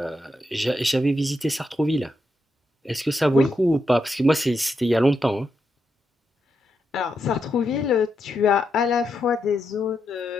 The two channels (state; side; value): normal; both; correlation 0.83